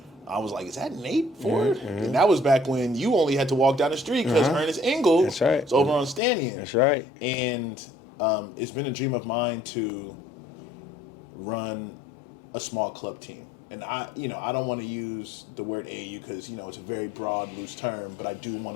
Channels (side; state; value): right; drops out; at 6.2 s